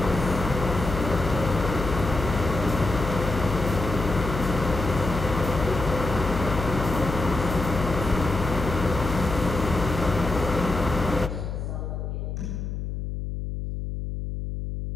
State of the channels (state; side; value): noise; left; hum, 5 dB below the sound